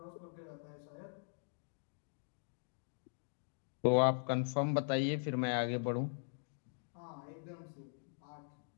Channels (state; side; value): silent; right; digital silence